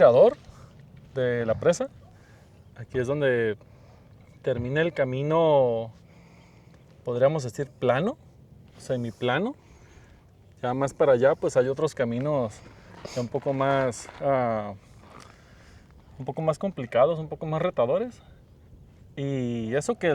de la presa. Aquí es donde termina el camino, podríamos decir plano, semiplano. Ya más para allá pues hay otros caminos ya un poco más complicados, un poco más retadores. Y eso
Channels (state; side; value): identical; both; correlation 1.00